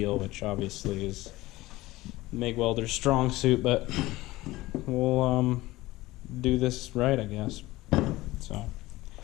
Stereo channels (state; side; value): quieter; right; 18.5 dB